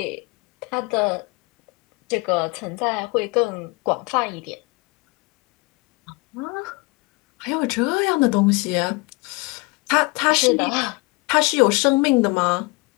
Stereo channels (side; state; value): right; quieter; 26.3 dB